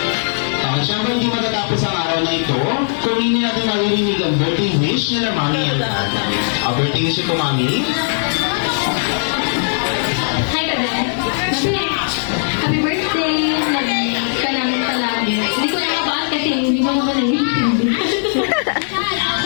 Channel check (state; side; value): silent; right; digital silence